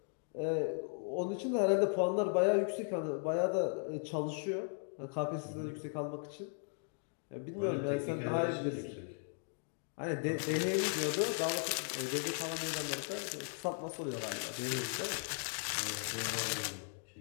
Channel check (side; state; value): right; silent; 53 dB below the other